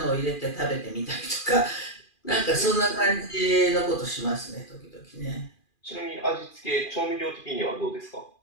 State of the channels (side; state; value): right; late; 2.4 ms